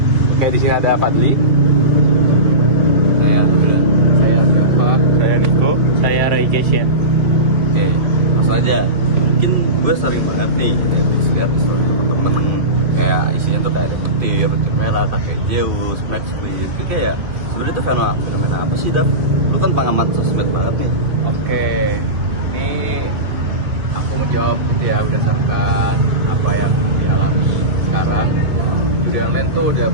Kayak di sini ada Fadli, Saya Dafa, saya Niko, Saya Roy Kesya. Oke, langsung aja. Mungkin gue sering banget nih lihat story teman-teman kayak isinya tuh kayak ada petir merah, kakek Zeus, Max Queen. Itu kayak sebenarnya itu fenomena apa sih, Dap? Lu kan pengamat sosmed banget nih. Oke, ini aku menjawab gitu ya berdasarkan apa yang dialami sekarang. Judi online tuh udah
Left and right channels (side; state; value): left; late; 2.6 ms